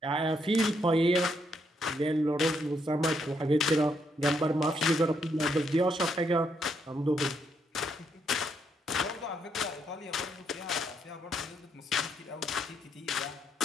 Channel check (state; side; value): normal; both; correlation 0.75